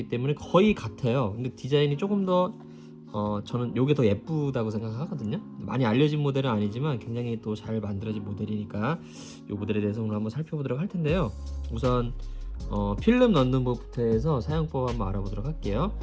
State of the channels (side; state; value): both; identical; correlation 1.00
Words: 때문에 거의 같아요. 근데 디자인이 조금 더 저는 이게 더 예쁘다고 생각하거든요. 많이 알려진 모델은 아니지만 굉장히 또 잘 만들어진 모델이니까 이 모델에 대해서 오늘 한번 살펴보도록 할 텐데요. 우선 필름 넣는 법부터 해서 사용법 한번 알아보도록 할게요.